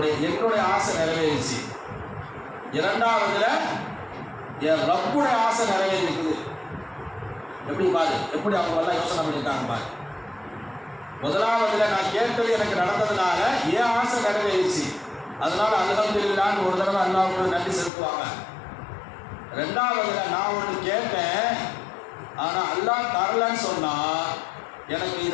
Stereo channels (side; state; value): right; drops out; at 17.9 s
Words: ஆசை நிறைவேறிச்சு. இரண்டாவதுல என் ரப்புடைய ஆசை நிறைவேறிக்குது. எப்படி பாரு, எப்படி அவங்க எல்லாம் யோசனை பண்ணிட்டாங்க பாரு. முதலாவதுல நான் கேட்டது எனக்கு நடந்ததுனால என் ஆசை நிறைவேறிச்சு, அதனால அல்ஹம்துலில்லாஹ்னு ஒரு தடவை அல்லாஹ்வுக்கு நன்றி செலுத்துவாங்க. ரெண்டாவதுல நான் ஒன்று கேட்டேன், ஆனா அல்லாஹ் தரலன்னு சொன்னா எனக்கு